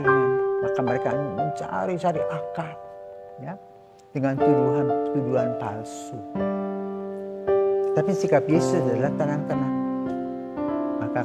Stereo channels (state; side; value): identical; both; correlation 1.00